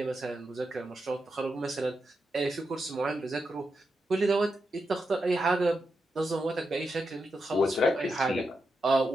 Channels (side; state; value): both; normal; correlation 0.86